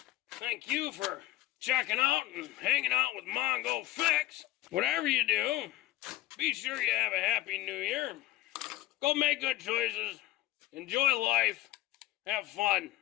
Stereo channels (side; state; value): right; quieter; 16.2 dB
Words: thank you for checking out and hanging out with Mongo Fix. Whatever you do, be sure you have a happy new year. Go make good choices. Enjoy life. Have fun.